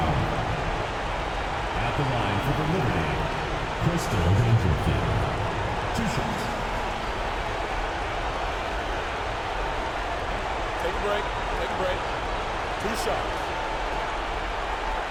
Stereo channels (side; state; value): both; identical; correlation 1.00